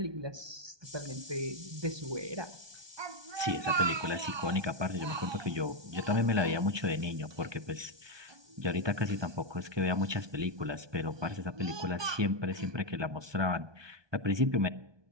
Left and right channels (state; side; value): late; left; 1.2 ms